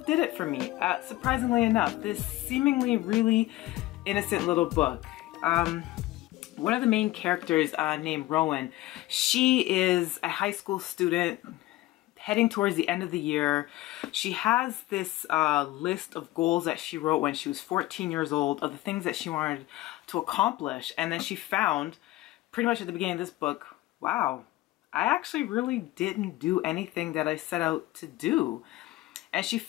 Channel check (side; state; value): right; quieter; 17.4 dB